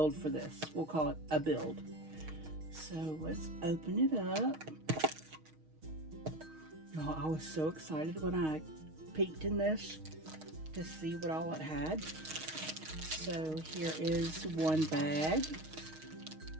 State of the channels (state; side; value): late; left; 6.4 ms